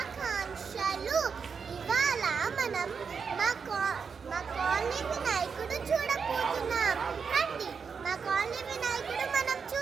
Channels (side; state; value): left; quieter; 5.9 dB